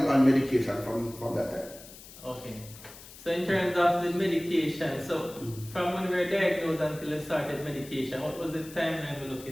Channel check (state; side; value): noise; left; hiss, 17 dB below the sound